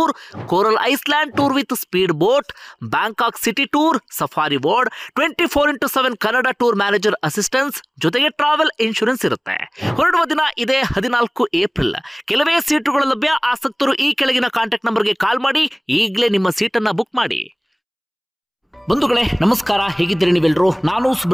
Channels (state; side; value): identical; both; correlation 1.00